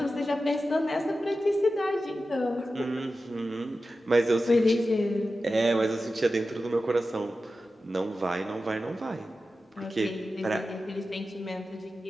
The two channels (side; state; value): both; normal; correlation 0.93